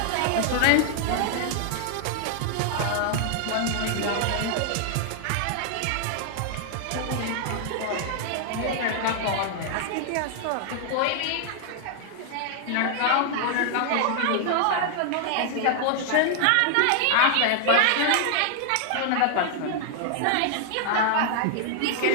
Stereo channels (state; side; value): different; both; correlation -0.01